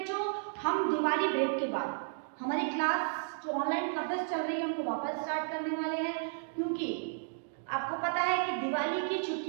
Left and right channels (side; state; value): left; silent; digital silence